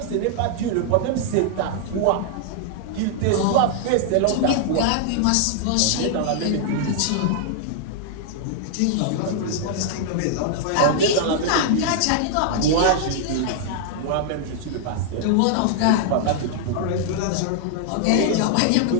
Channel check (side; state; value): both; different; correlation -0.01